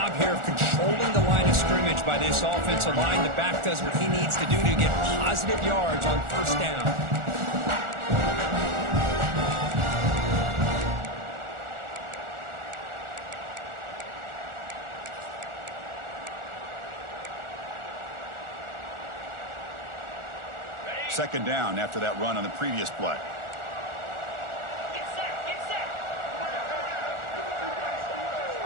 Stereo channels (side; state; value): left; late; 1.4 ms